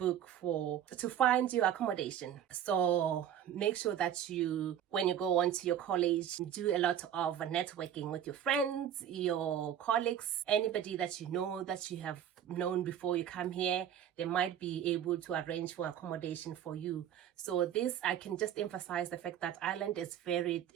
find your accommodation. So make sure that when you go on to your college, do a lot of networking with your friends, your colleagues, anybody that you know that you have known before you come here. They might be able to arrange for accommodation for you. So this, I can just emphasize the fact that Ireland is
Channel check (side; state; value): left; quieter; 10.0 dB